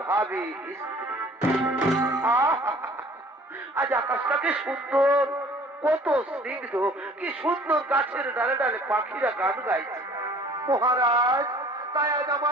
ভাবি স্ত্রী। আজ আকাশটা কি সুন্দর, কত স্নিগ্ধ, কি সুন্দর গাছের ডালে ডালে পাখিরা গান গাইছে। মহারাজ, তাই আজ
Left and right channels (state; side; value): normal; both; correlation 0.51